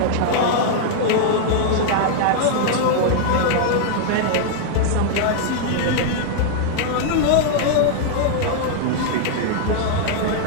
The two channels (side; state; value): both; different; correlation -0.01